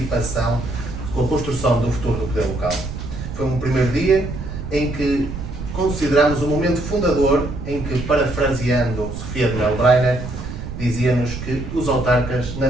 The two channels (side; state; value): right; noise; rumble, 8 dB below the sound